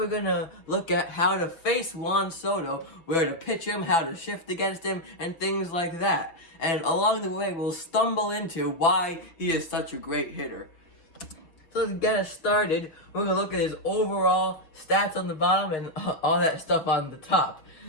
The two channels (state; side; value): late; right; 6.2 ms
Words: going to look at how to face Juan Soto, where to pitch him, how to shift against him, and things like that. And along the way, we'll stumble into why he is such a great hitter. So to get us started, we're going to look at his overall stats on the bottom and all that stuff on the top.